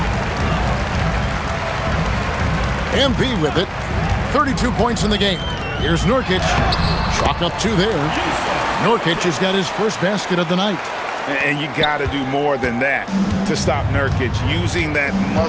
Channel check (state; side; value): identical; both; correlation 1.00